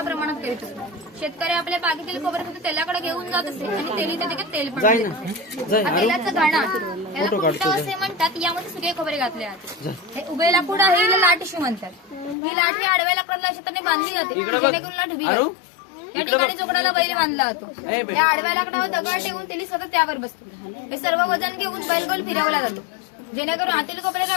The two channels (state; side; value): drops out; right; at 12.4 s